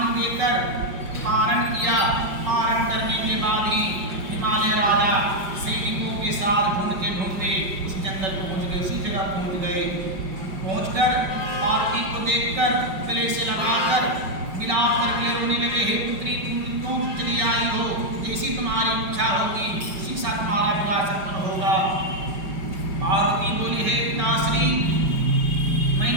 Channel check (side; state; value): left; late; 5.3 ms